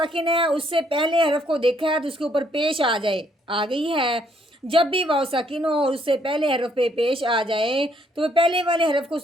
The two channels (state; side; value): normal; both; correlation 0.69